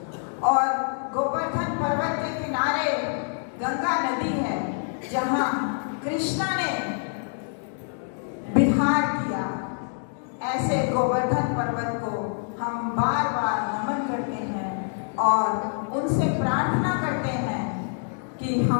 और गोवर्धन पर्वत के किनारे गंगा नदी है, जहां कृष्णा ने विहार किया। ऐसे गोवर्धन पर्वत को हम बार बार नमन करते हैं और उनसे प्रार्थना करते हैं कि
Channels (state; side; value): silent; right; 56 dB below the other